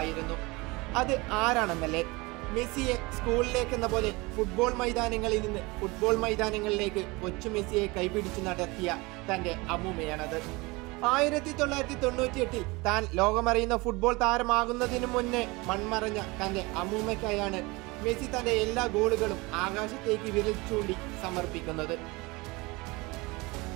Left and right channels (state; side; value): quieter; left; 24.4 dB